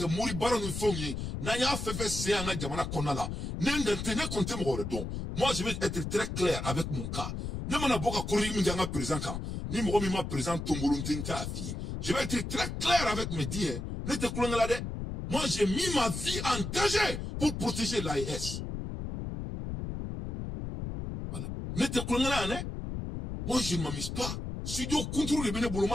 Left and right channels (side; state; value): left; noise; rumble, 5 dB below the sound